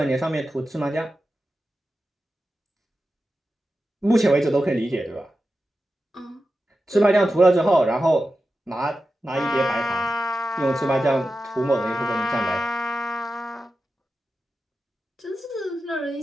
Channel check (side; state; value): both; normal; correlation 0.91